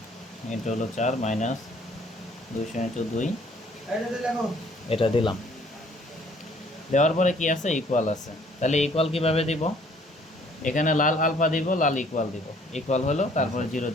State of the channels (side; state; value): both; normal; correlation 0.59